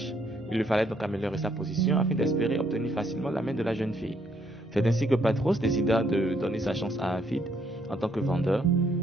Il lui fallait donc améliorer sa position afin d'espérer obtenir facilement la main de la jeune fille. C'est ainsi que Patros décida de donner sa chance à Hafid en tant que vendeur,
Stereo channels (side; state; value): both; normal; correlation 0.71